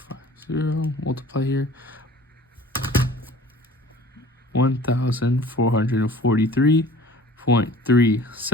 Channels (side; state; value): both; normal; correlation 0.47